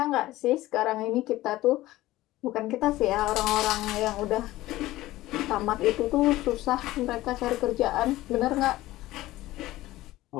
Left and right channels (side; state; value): right; quieter; 16.8 dB